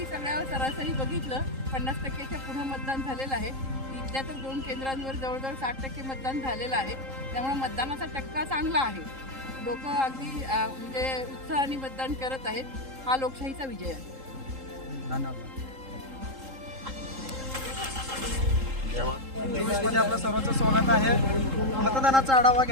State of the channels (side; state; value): left; late; 3.8 ms